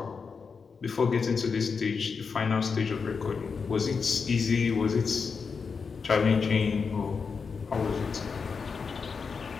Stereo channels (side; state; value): right; quieter; 5.4 dB